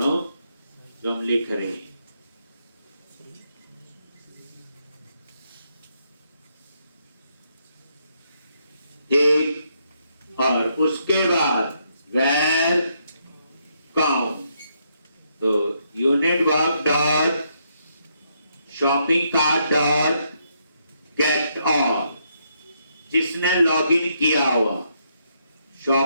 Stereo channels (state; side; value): inverted; both; correlation -0.76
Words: जो हम लिख रहे हैं। ठीक, और उसके बाद where count, तो unit work dot shopping cart dot get all, जिसने लॉगिन किया हुआ,